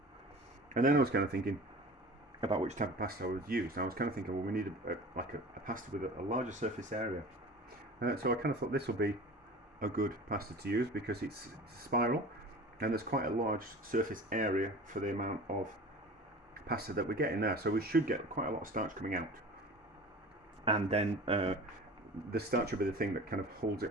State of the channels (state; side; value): normal; both; correlation 0.38